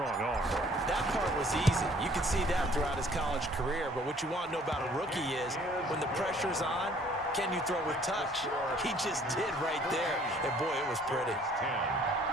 arm. That part was easy. You could see that throughout his college career. But what you want to know about a rookie is when the pressure's on, can you throw with touch? He just did right there. And, boy, it was pretty. 10.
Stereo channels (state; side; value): normal; both; correlation 0.57